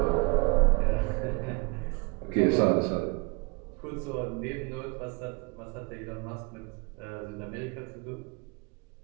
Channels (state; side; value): quieter; left; 30.6 dB